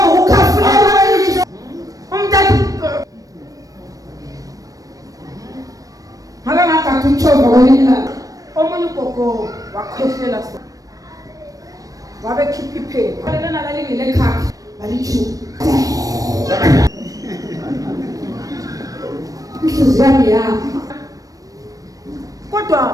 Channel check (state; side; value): late; left; 0.17 ms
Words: umntana ngakangagathi umtshova kwelinye ilanga omunye ugogo wakhohlela wabe khipha iphepha lena lalingile ekhaya balithuka inhliziyo yami kodwa